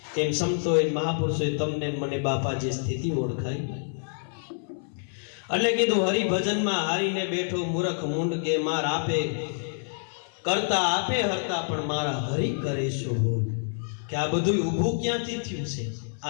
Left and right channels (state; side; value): silent; right; 60 dB below the other